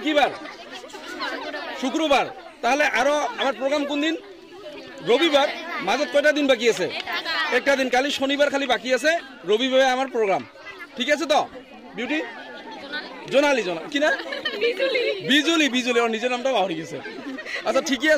কি বার শুক্রবার তাহলে আরো আমার প্রোগ্রাম কোন দিন রবিবার মাজত কয়টা দিন বাকি আছে একটা দিন কালি শনিবার খালি বাকি আছে রবিবারে আমার প্রোগ্রাম ঠিক আছে তো বিউটি জোনালি কি না বিজুলি ওর নিজের নামটা পাহরি গেছে আচ্ছা ঠিকই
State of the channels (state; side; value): identical; both; correlation 1.00